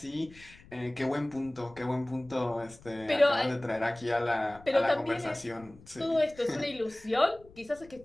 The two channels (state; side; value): noise; left; rumble, 23 dB below the sound